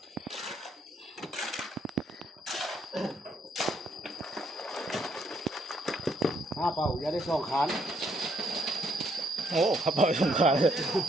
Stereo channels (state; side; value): normal; both; correlation 0.71